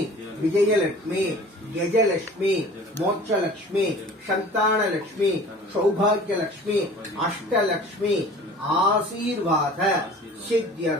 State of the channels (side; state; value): both; normal; correlation 0.44